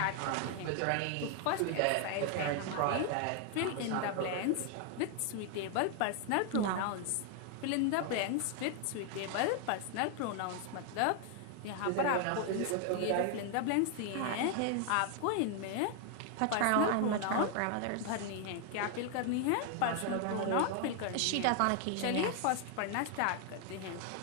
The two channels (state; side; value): different; both; correlation 0.00